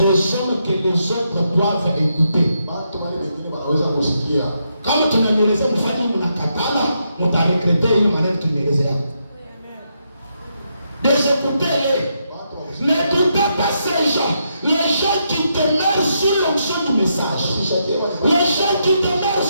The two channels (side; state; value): both; inverted; correlation -0.80